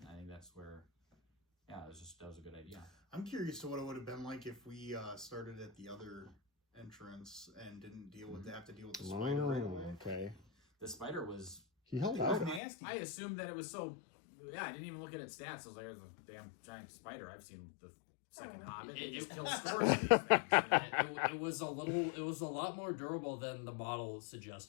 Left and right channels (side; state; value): right; drops out; at 12.6 s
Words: think that's where, that was a good idea. I'm curious to what it would have been like if we started at the other entrance and didn't have to deal with the spider right away. Okay. The spider was... He held out. Nasty. I assumed that it was so... Yeah, I didn't even look at its stats. I was like, there's a damn giant spider. I've seen the second Hobbit. It just kills scores of these things. It was a lot more durable than the model